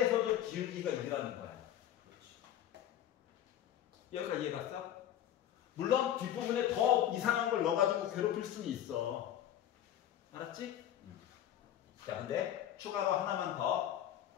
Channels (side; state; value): right; quieter; 11.3 dB